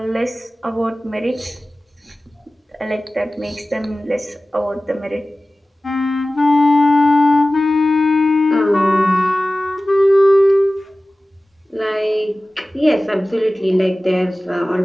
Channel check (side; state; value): both; normal; correlation 0.97